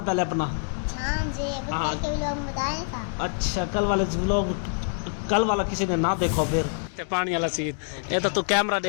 पहले अपना। हाँ अच्छा, कल वाला किसी ने ना देखो फिर पानी वाला सीन। ये तो तू कैमरा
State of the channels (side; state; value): right; silent; digital silence